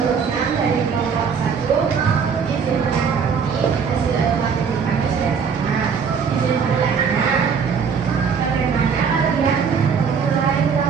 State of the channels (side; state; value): left; quieter; 6.3 dB